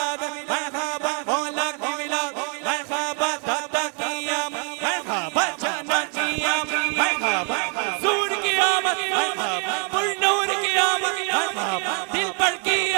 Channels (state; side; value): quieter; left; 39.3 dB